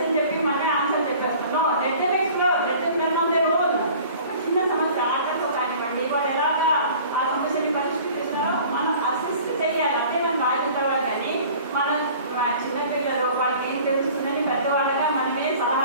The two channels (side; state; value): both; inverted; correlation -0.47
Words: చెప్పి మనమే ఆన్సర్ చెప్పేస్తాను. Let them explore, let them learn on their own. ఒక చిన్న సమస్య ఆటతో కానివ్వండి, వాళ్ళు ఎలాగా ఆ సమస్యని పరిష్కరిస్తున్నారో మనం అసిస్ట్ చేయాలి. అంటే మనం రాయిన తర్వాత కానీ మనం చిన్నపిల్లలు వాళ్ళకి ఏం తెలుస్తుందని పెద్దవాళ్ళగా మనమే